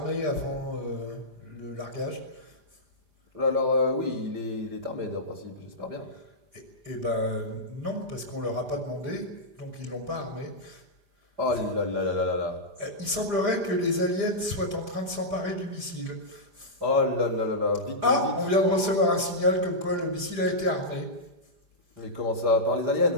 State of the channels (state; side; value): late; left; 5.0 ms